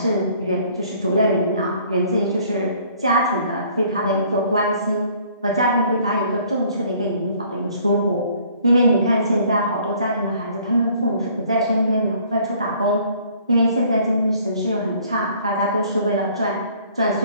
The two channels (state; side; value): inverted; both; correlation -0.58